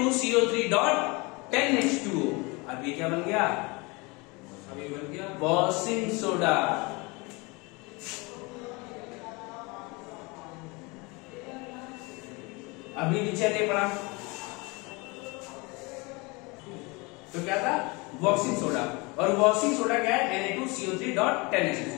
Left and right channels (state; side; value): quieter; right; 26.8 dB